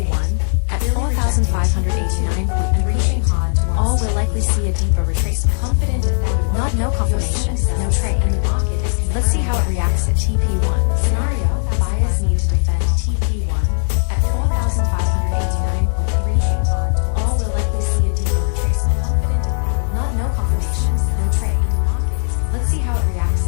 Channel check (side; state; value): right; silent; digital silence